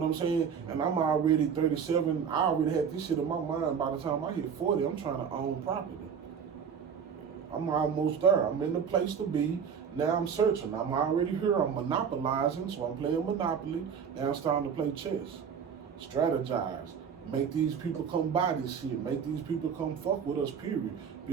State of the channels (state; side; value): quieter; left; 7.0 dB